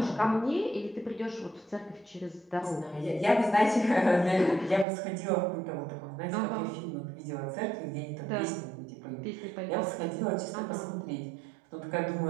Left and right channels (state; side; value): drops out; left; at 4.9 s